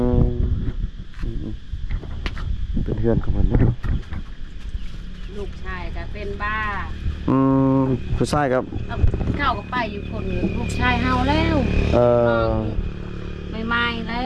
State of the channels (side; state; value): both; identical; correlation 1.00